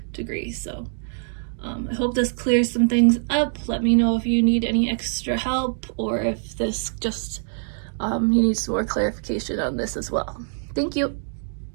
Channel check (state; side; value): silent; left; digital silence